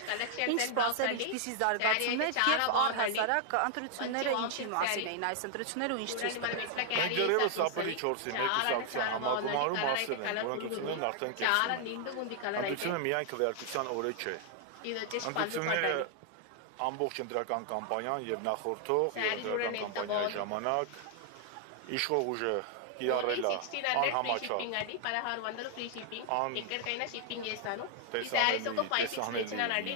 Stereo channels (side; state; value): both; different; correlation 0.00